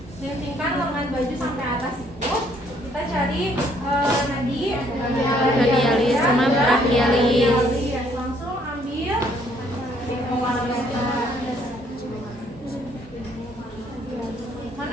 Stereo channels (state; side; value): normal; both; correlation 0.65